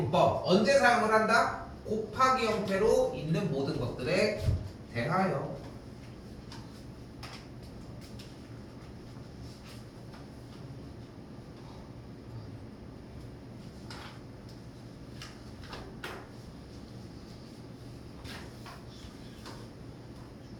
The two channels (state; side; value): identical; both; correlation 1.00